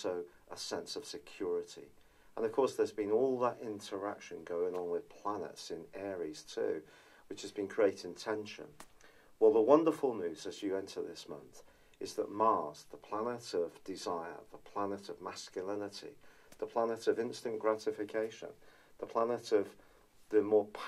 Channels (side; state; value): both; identical; correlation 1.00